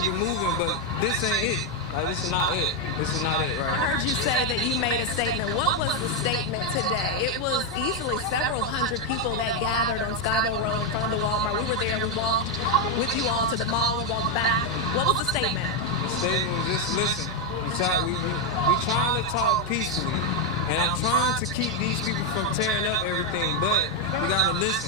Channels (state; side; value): normal; both; correlation 0.02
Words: it moving, but this ain't it. Like, this is not it. This is not it, right? I heard you say that you made a statement. What was the statement today? It was easily several hundred people that gathered on Skybo Road in front of the Walmart. We were there. We walked with you all to the mall. We walked back. What was the statement? The statement was just listen. We trying to talk peacefully, and I'm trying to keep these people from tearing up everything, but we gotta